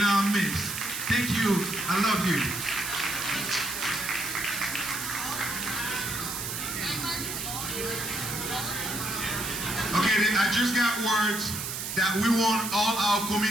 midst. Thank you. I love you. Okay, I just got words that we want all our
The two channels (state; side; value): noise; right; hiss, 5 dB below the sound